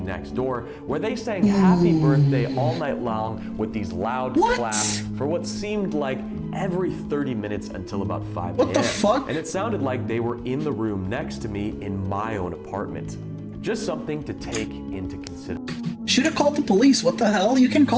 next door, where they sang happy birthday all night long with these loud claps for what seemed like every 30 minutes until about 5 p.m. What the fuck? And it sounded like they were in the room next to me in my own apartment. Just something to take into consideration. Should have called the police. What the hell? You can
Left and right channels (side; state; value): both; identical; correlation 1.00